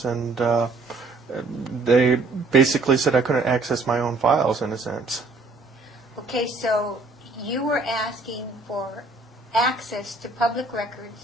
and they basically said I couldn't access my own files, in a sense. Okay, so you were asking for access to public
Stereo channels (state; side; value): quieter; left; 3.4 dB